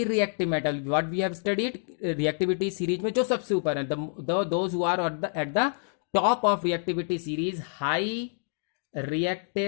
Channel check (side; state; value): right; silent; digital silence